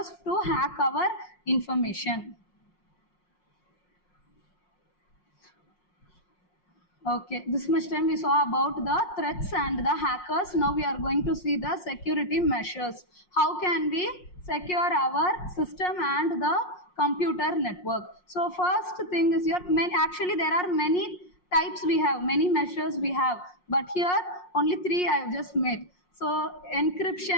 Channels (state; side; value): late; right; 5.6 ms